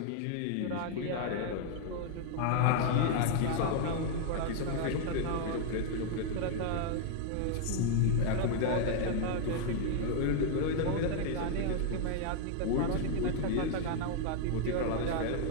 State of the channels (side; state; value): both; different; correlation 0.00